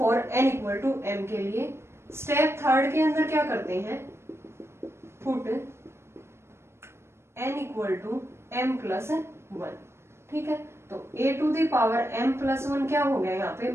n equal to m के लिए। स्टेप थर्ड के अंदर क्या करते हैं, put n equal to m plus 1। ठीक है, तो a to the power m plus 1 क्या हो गया, यहाँ पे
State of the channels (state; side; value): late; left; 0.12 ms